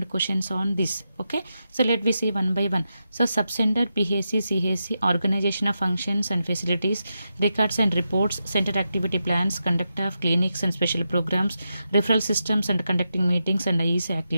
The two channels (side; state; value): both; inverted; correlation -0.87